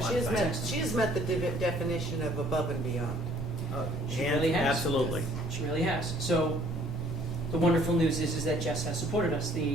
has met the definition of above and beyond. She really has. Absolutely. She really has. So the wonderful news is that Jess has supported us.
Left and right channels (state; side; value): normal; both; correlation 0.58